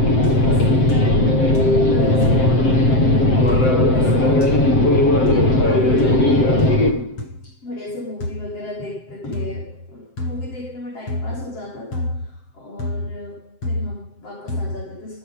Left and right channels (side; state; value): right; late; 7.7 ms